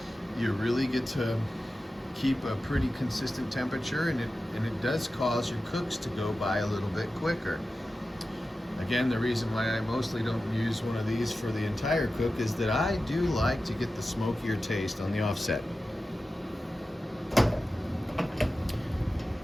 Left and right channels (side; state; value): both; normal; correlation 0.94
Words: you really get to keep a pretty consistent temperature, and it does cause your cooks to go by a little bit quicker. Again, the reason why I mostly don't use one of these for the entire cook is that I do like to get the smokier taste on the offset.